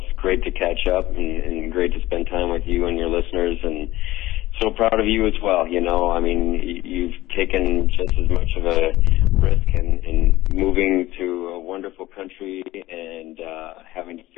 great to catch up and great to spend time with you and your listeners, and so proud of you as well. You've taken just as much of a risk in moving to a wonderful country and having to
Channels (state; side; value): quieter; right; 17.1 dB